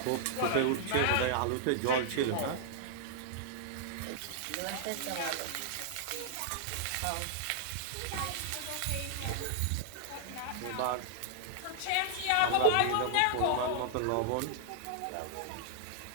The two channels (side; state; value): both; different; correlation -0.01